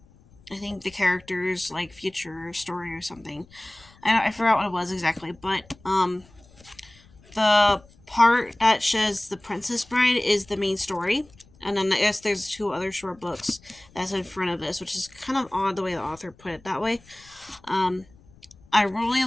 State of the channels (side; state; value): left; noise; rumble, 27 dB below the sound